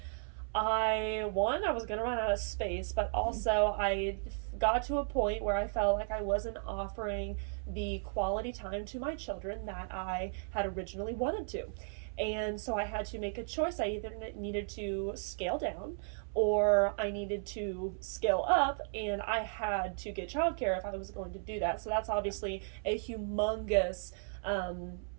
I was going to run out of space, but also I got to a point where I felt like I wasn't offering the quality time to my children that I had originally wanted to. And so I had to make a choice. I either needed to scale down or I needed to scale up, and I had to get childcare if I was going to do that. So that's obviously a humongous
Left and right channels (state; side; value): silent; left; 54 dB below the other